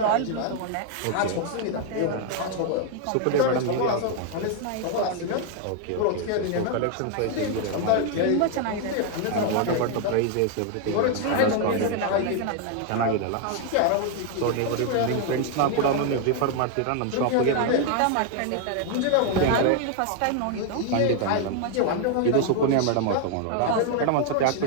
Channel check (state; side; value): different; both; correlation 0.00